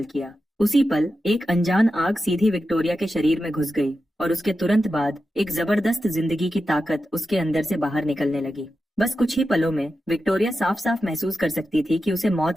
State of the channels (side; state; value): both; normal; correlation 0.91